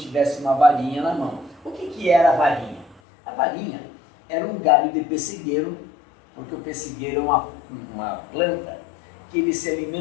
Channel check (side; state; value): right; drops out; at 3.0 s